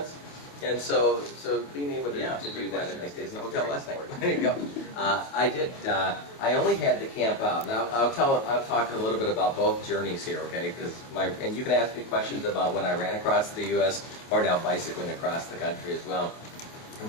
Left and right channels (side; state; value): right; late; 27 ms